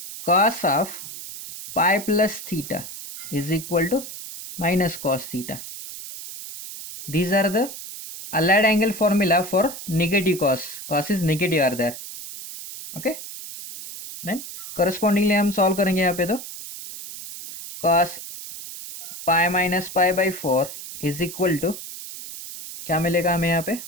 cos of pi plus theta is equal to minus cos theta. These are the allied angle formula for negative cos. Cos is negative are there. Okay. Then correspondingly हम solve करेंगे यहाँ पे. तो cos pi minus pi by 4 is equal to क्या मिलेगा हमें यहाँ पे,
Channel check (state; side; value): noise; right; hiss, 11 dB below the sound